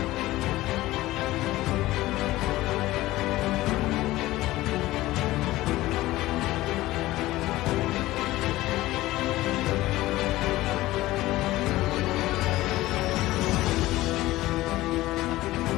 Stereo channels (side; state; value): right; quieter; 17.2 dB